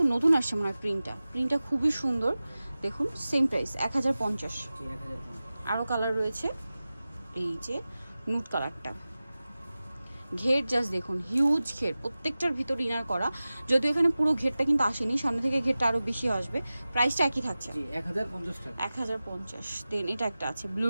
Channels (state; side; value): inverted; both; correlation -0.96